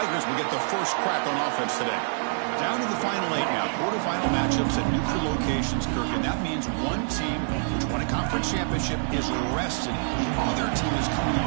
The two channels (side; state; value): left; silent; 58 dB below the other